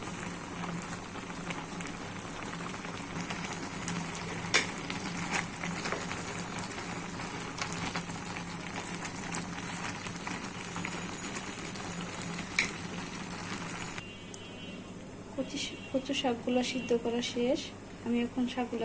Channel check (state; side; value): identical; both; correlation 1.00